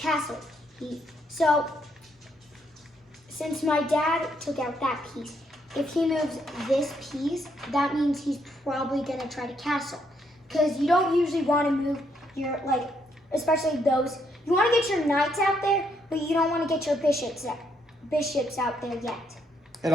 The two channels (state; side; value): normal; both; correlation 0.74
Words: So since my dad took out that piece, if he moves this piece, that means he's probably gonna try to castle. Because you don't usually want to move your, like, especially those, you want to get your knights out there, but you don't want to get your bishops out there yet. It